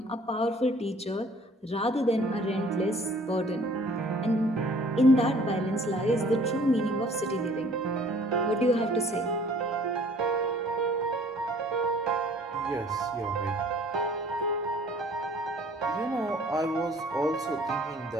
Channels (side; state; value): both; normal; correlation 0.54